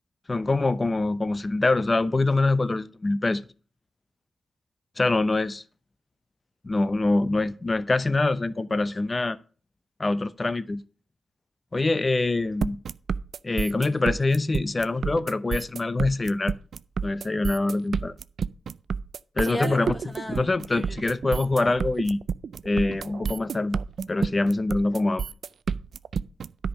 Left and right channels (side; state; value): both; normal; correlation 0.95